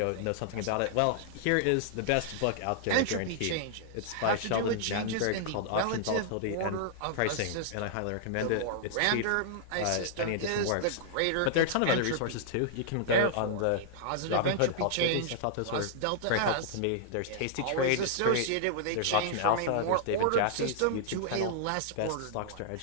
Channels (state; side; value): different; both; correlation -0.01